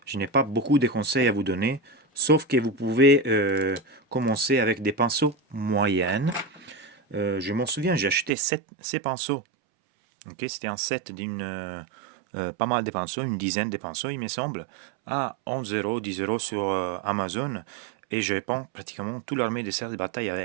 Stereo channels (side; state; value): left; drops out; at 8.3 s